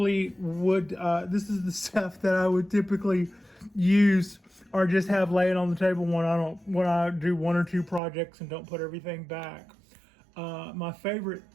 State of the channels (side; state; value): left; drops out; at 8.0 s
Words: would. This is the stuff that I would typically use or just have laying on the table when I do 1 or 2 projects and don't put everything back. My favorite